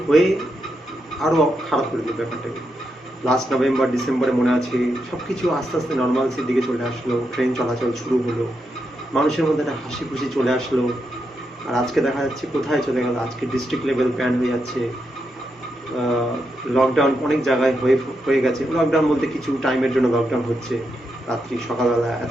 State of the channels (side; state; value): both; normal; correlation 0.84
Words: হয়ে আরও খারাপ করে দিল ব্যাপারটাকে। লাস্ট নভেম্বর ডিসেম্বরে মনে আছে সব কিছু আস্তে আস্তে নর্মালসির দিকে চলে আসলো, ট্রেন চলাচল শুরু হলো, মানুষের মধ্যে একটা হাসি খুশি চলে আসলো। আর আজকে দেখা যাচ্ছে কোথায় চলে গেল, আজকে ডিস্ট্রিক্ট লেভেল ব্যান হয়ে যাচ্ছে, লকডাউন অনেক জায়গায় হয়ে গেছে। লকডাউন বলতে কিছু টাইমের জন্য লকডাউন হচ্ছে, রাত্রি সকালবেলা এত